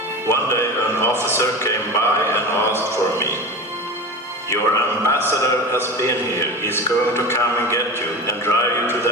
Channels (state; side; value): normal; both; correlation 0.29